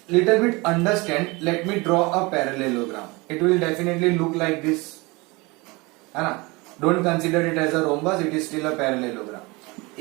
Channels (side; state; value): left; quieter; 25.1 dB